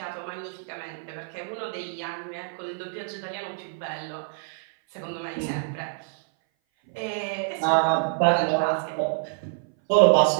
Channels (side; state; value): left; silent; 58 dB below the other